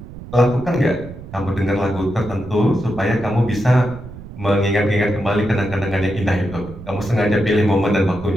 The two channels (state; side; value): noise; right; rumble, 14 dB below the sound